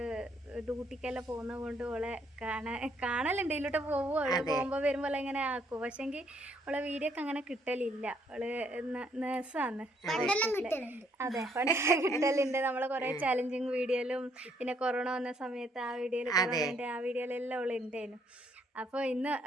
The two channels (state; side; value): normal; both; correlation 0.69